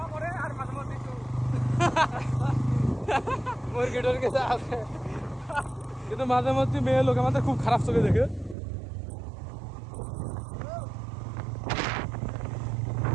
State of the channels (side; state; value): left; drops out; at 8.6 s